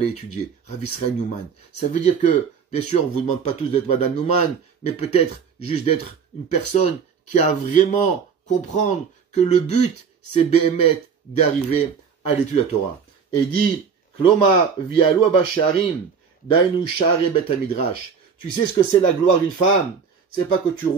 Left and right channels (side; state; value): left; quieter; 6.2 dB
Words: étudier. Rav Israel Newman. Ça veut dire que, bien sûr, on vous demande pas tous d'être Madame Newman, mais peut-être juste d'être une personne qui a vraiment comprendre que le but, c'est Behemet d'arriver à l'étude de la Torah. Et il dit, Kloma vialu abasharim, dainu share bet midrash. Tu sais ce que c'est la gloire d'une femme? C'est pas que tu